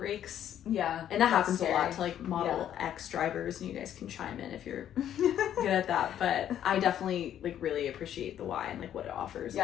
Yeah. And that happens scary. a lot to like Model X drivers, and you guys can chime in if you're good at that. But I definitely like really appreciate the Y and like what it offers a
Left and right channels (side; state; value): right; quieter; 10.5 dB